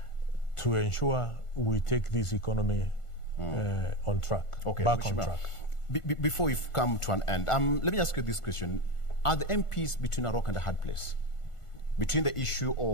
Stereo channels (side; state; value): right; late; 1.5 ms